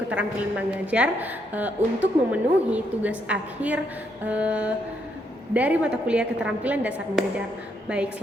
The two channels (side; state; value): both; normal; correlation 0.75